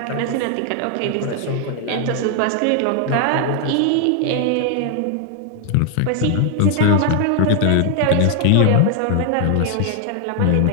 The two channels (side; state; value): both; different; correlation 0.00